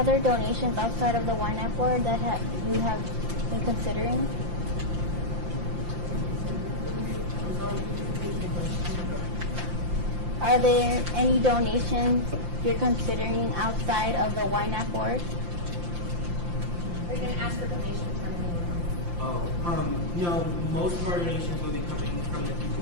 donations outside of the Ynapp board that you have been considering? Are there any donations you're considering outside of the Ynapp board? Are you going to ask for donations from anyone? No, most of our donations will be coming from the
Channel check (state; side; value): late; left; 5.8 ms